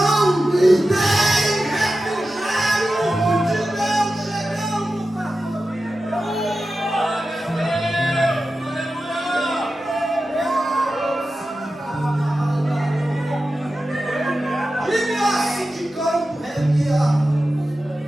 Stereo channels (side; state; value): both; normal; correlation 0.93